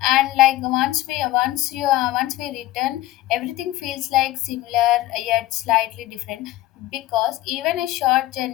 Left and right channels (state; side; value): quieter; right; 16.4 dB